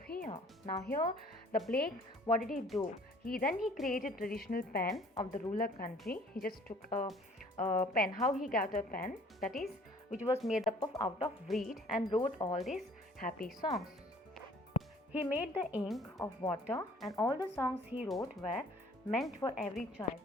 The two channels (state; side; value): normal; both; correlation 0.55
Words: Now here the Blake, what did he do? He created traditional pen of the ruler country. He just took a pen. How he got a pen? That is, which was made up of out of reed, and wrote all these happy songs. He made the ink of water, and all the songs he wrote were meant for every child